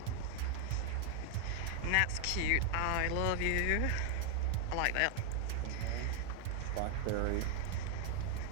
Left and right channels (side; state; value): both; different; correlation 0.00